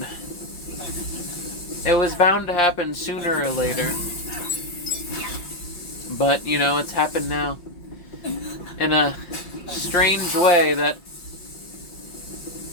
It was bound to happen sooner or later. But, you know, it's happened now. In a strange way that...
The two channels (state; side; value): late; right; 5.4 ms